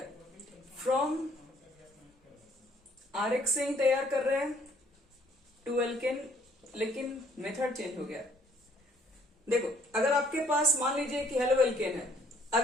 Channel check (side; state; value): both; normal; correlation 0.62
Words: फ्रॉम आरएक्स से ही तैयार कर रहे हैं टू एल्केन, लेकिन मेथड चेंज हो गया। देखो अगर आपके पास मान लीजिए कि हेलो एल्केन है,